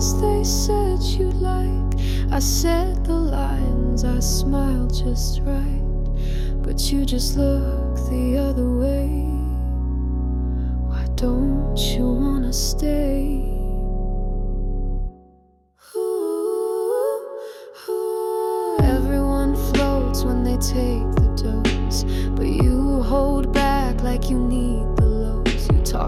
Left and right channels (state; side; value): identical; both; correlation 1.00